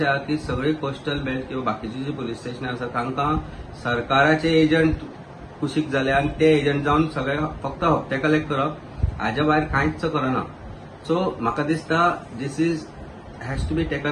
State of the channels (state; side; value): identical; both; correlation 1.00